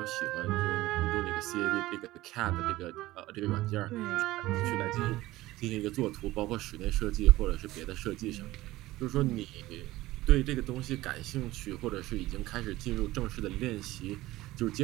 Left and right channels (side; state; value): left; quieter; 17.5 dB